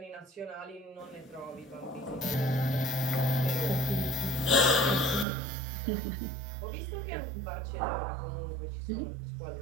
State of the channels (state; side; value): drops out; left; at 5.2 s